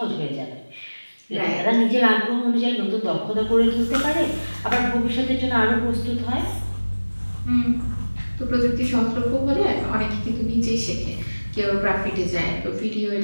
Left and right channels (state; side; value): inverted; both; correlation -1.00